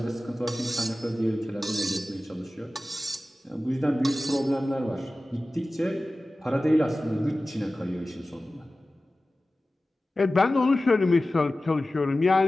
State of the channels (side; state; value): both; normal; correlation 0.96